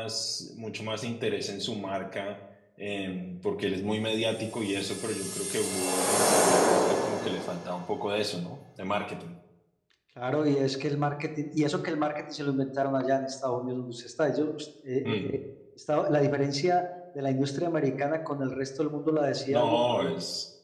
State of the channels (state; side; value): identical; both; correlation 1.00